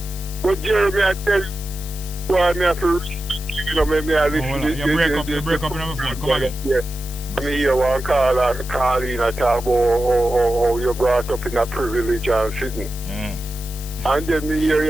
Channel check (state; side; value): noise; left; hiss, 14 dB below the sound